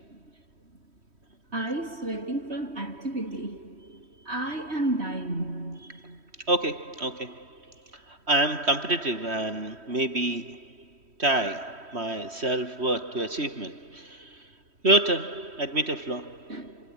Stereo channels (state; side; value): late; left; 3.1 ms